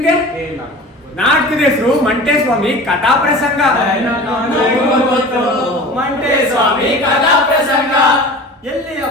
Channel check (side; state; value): both; normal; correlation 0.37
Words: ನಾಟಕದ ಹೆಸರು ಮಂಟೇಸ್ವಾಮಿ ಕಥಾ ಪ್ರಸಂಗ. ಮಂಟೇಸ್ವಾಮಿ ಕಥಾ ಪ್ರಸಂಗ